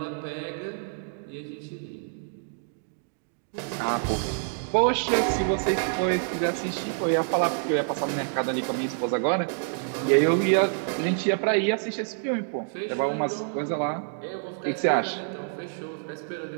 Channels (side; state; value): left; silent; digital silence